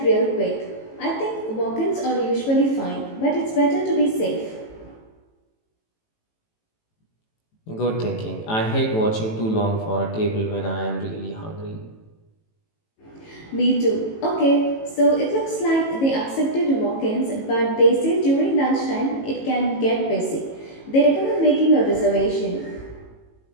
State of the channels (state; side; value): late; right; 18 ms